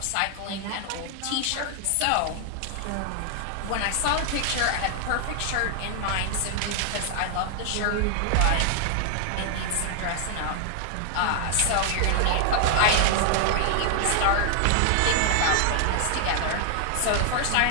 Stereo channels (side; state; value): both; different; correlation 0.00